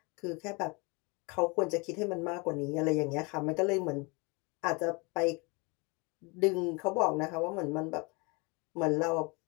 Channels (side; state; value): right; quieter; 28.6 dB